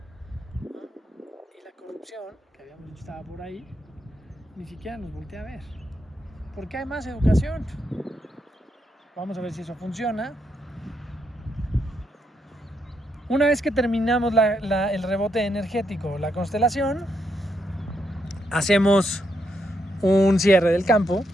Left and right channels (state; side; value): normal; both; correlation 0.79